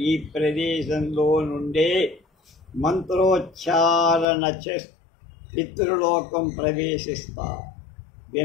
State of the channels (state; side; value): drops out; right; at 4.2 s